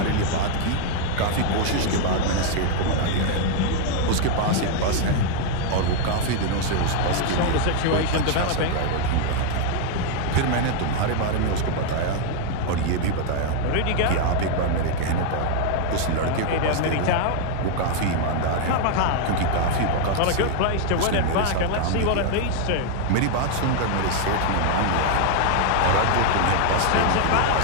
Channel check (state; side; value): different; both; correlation 0.00